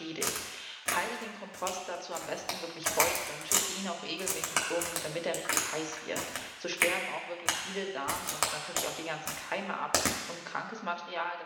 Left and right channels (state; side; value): identical; both; correlation 1.00